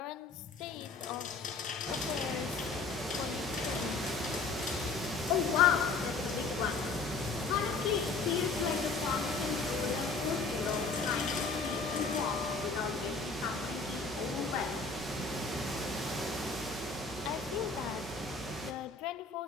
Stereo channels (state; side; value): quieter; right; 4.0 dB